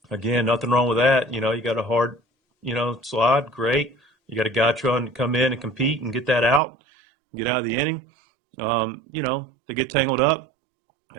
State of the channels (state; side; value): drops out; left; at 6.6 s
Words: Again, nothing wrong with that. You got a hard, slide. Great. You got a guy trying to come in and compete and get that out, get out of the inning. They get tangled up.